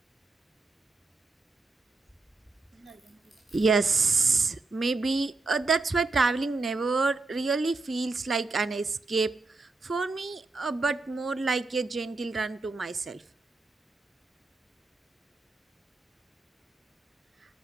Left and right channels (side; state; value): left; quieter; 3.7 dB